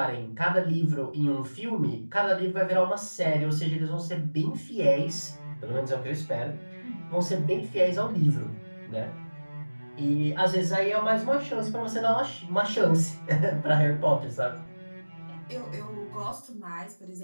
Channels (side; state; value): both; inverted; correlation -1.00